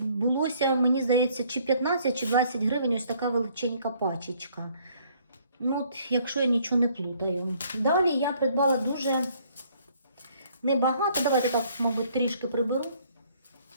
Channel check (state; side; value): inverted; both; correlation -0.63